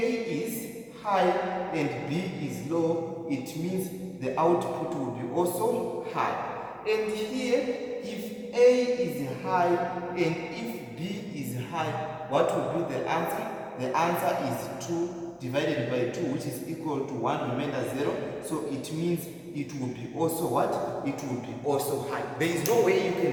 is high and B is low, it means the output will be also high. And here, if A is high and if B is high, what will be the answer? The answer is 2 divided by 2, which is equal to 1 remainder 0. So it means it will be also what? It will be also high. There is no way you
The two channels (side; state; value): both; identical; correlation 1.00